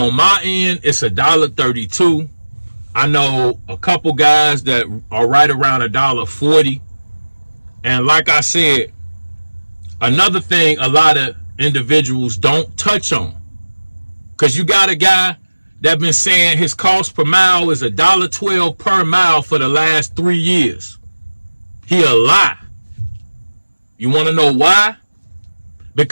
my end, it's $1.32. I know a couple guys that are right around $1.40. And like I said, another thing a lot of individuals don't touch on, because you got a guy that been saying his cost per mile is $1.12 per mile for the last 3 years. He a lie. You want to know why?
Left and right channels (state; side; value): inverted; both; correlation -1.00